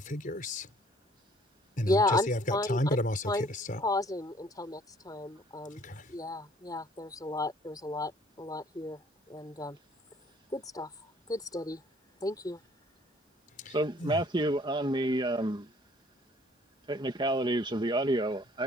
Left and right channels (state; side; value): normal; both; correlation 0.58